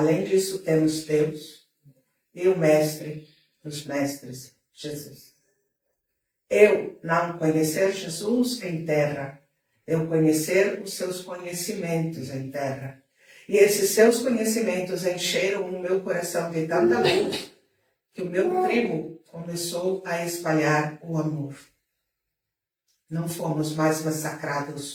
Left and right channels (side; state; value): both; identical; correlation 1.00